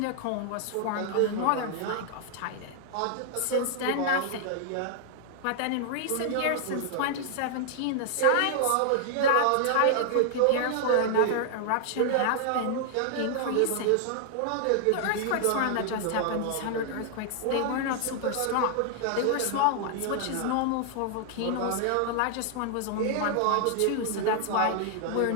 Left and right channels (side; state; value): both; different; correlation 0.00